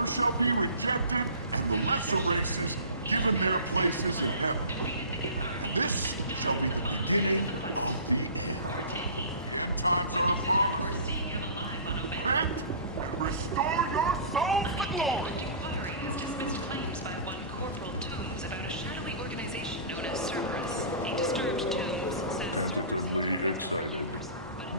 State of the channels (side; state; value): both; inverted; correlation -0.40